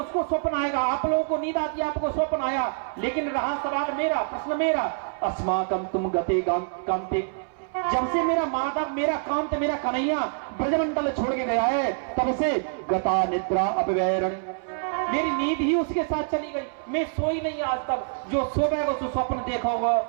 स्वप्न आएगा। आप लोगों को नींद आती है, आपको स्वप्न आया, लेकिन रहा सवाल मेरा, प्रश्न मेरा, अस्माकं तुम गते कांते, जब से मेरा माधव, मेरा कांत, मेरा कन्हैया ब्रजमंडल छोड़ के गया है, तब से गता निद्रा अपवैरण, मेरी नींद ही उसके साथ चली गई। मैं सोई नहीं आज तक, जो सोएगा तो स्वप्न देखोगा,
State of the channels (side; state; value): left; silent; 61 dB below the other